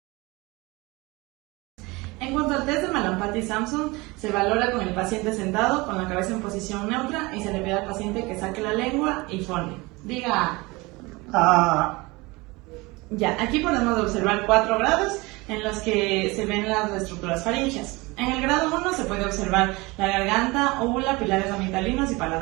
En cuanto al test de Mallampati-Sampson, se valora con el paciente sentado, con la cabeza en posición neutra, y se le pide al paciente que saque la lengua y fone. Diga Ah. Ya, aquí podemos observar 4 grados en los que se ven las estructuras faríngeas. En el grado 1 se puede observar la garganta, úvula, pilares amigdalinos y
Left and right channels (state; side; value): quieter; left; 23.7 dB